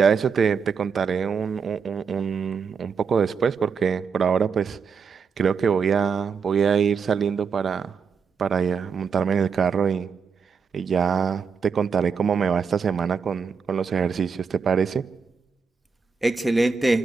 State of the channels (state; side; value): quieter; left; 5.9 dB